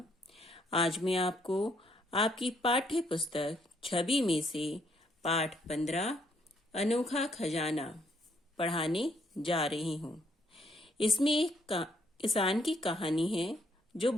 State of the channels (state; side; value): normal; both; correlation 0.70